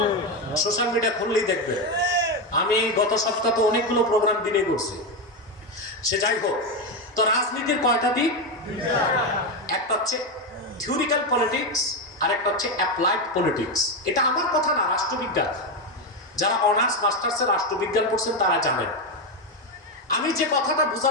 সোশ্যাল মিডিয়া খুললেই দেখবে। আমি গত সপ্তাহে তো অনেকগুলো প্রোগ্রাম দিনে করছি। সে যাই হোক, তো রাজনীতির কয়টা দিক? একটা হচ্ছে থিওরিক্যাল পলিটিক্স, আর একটা হচ্ছে অ্যাপ্লাইড পলিটিক্স। এটা আমার কথা না, রাষ্ট্রবিজ্ঞান। যারা অনার্স মাস্টার্সে রাষ্ট্রবিজ্ঞান পড়ছেন তারা জানেন। আমি যে কথাটা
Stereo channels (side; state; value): both; normal; correlation 0.10